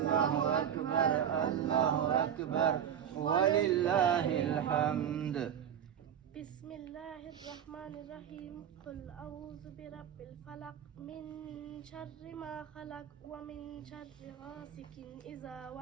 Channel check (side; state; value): left; quieter; 9.1 dB